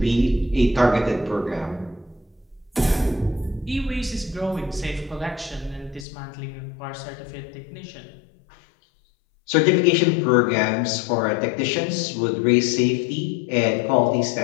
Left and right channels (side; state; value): right; drops out; at 6.1 s